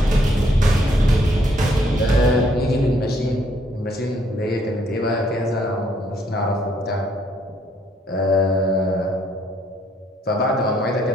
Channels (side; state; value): both; normal; correlation 0.68